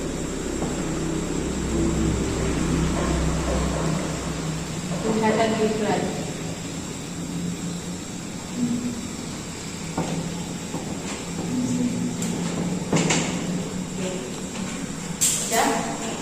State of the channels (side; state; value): both; identical; correlation 1.00